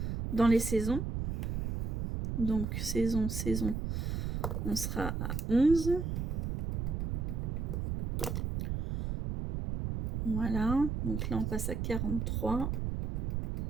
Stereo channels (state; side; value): noise; right; rumble, 2 dB below the sound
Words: dans les saisons. Donc, saison, on sera à 11. Voilà. Donc là, on passe à 43.